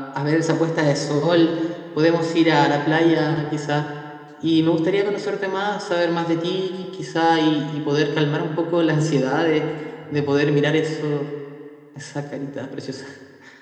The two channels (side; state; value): both; identical; correlation 1.00